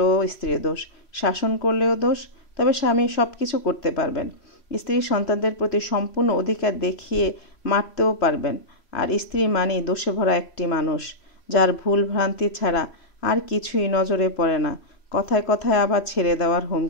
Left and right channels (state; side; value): late; right; 3.1 ms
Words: স্ত্রীর দোষ। শাসন করলেও দোষ। তবে স্বামী সব কিছু করতে পারবেন। স্ত্রী সন্তানদের প্রতি সম্পূর্ণ অধিকার দেখিয়ে মারতেও পারবেন। আর স্ত্রী মানেই দোষে ভরা একটি মানুষ, যার ভুল ভ্রান্তি ছাড়া আর কিছুই নজরে পড়ে না। কথায় কথায় আবার ছেড়ে দেওয়ার